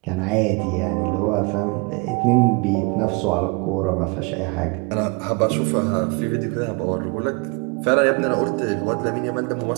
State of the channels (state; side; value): quieter; left; 29.7 dB